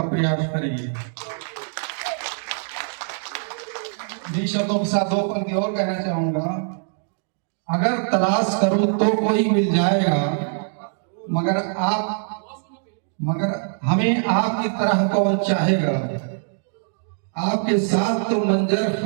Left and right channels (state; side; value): silent; left; digital silence